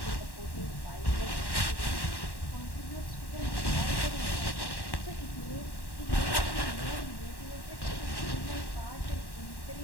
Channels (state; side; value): late; right; 1.1 ms